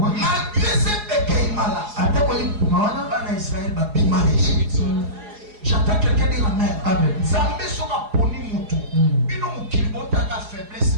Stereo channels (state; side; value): late; left; 4.9 ms